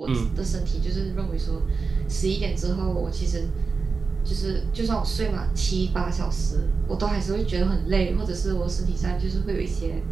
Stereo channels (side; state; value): left; quieter; 4.7 dB